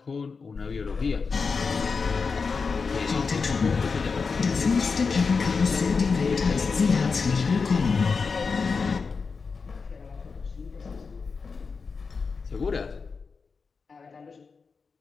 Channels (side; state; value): right; quieter; 4.9 dB